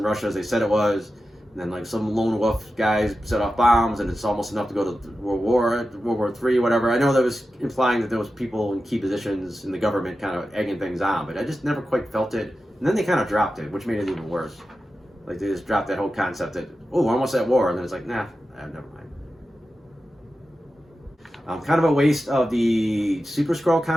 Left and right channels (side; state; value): both; normal; correlation 0.92